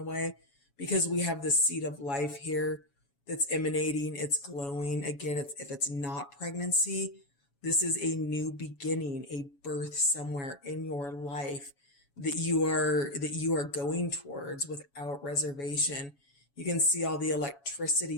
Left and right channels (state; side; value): late; right; 7.1 ms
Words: way, because we have the seed of life here that's emanating. It's glowing. Again, if it's not pregnancy, this is a new beginning, a birth somewhere in your life that you are going towards without reservation. You can see all the